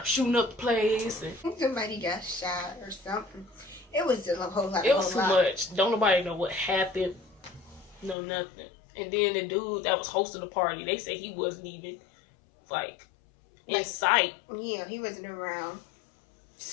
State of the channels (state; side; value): drops out; right; at 8.2 s